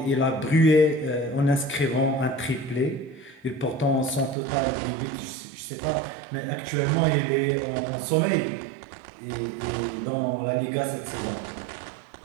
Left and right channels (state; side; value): drops out; left; at 4.4 s